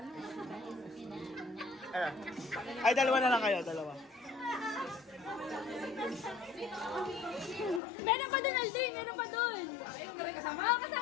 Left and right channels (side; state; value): right; drops out; at 7.8 s